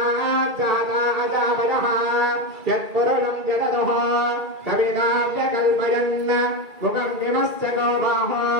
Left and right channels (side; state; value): left; late; 2.3 ms